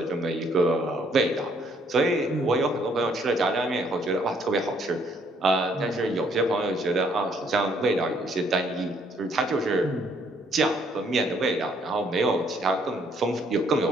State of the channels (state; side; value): normal; both; correlation 0.66